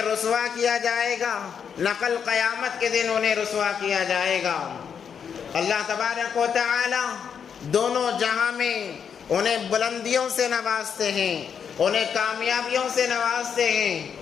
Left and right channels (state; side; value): quieter; right; 7.3 dB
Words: رسوا کیا جائے گا، نہ کل قیامت کے دن انہیں رسوا کیا جائے گا۔ اللہ تبارک و تعالی دونوں جہاں میں انہیں بلندیوں سے نوازتے ہیں، انہیں کامیابیوں سے نوازتے ہیں۔